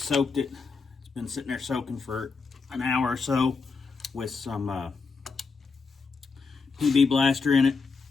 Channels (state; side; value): quieter; right; 4.8 dB